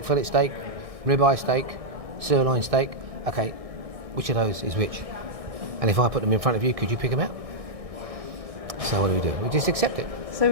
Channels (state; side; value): late; left; 1.6 ms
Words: fillet steak, ribeye steak, sirloin steak. Okay, which of those is which? And if I put them in front of you, could you pick them out? So what do? We just accept it.